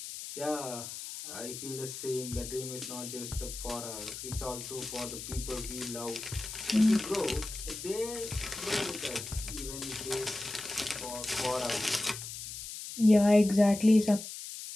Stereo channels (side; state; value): left; noise; hiss, 9 dB below the sound